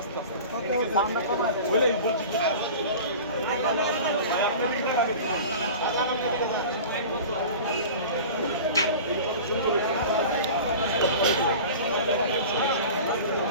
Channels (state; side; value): inverted; both; correlation -0.37